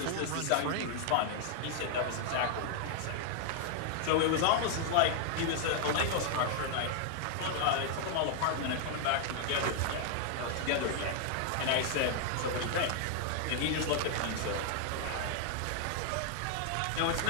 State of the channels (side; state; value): both; different; correlation 0.00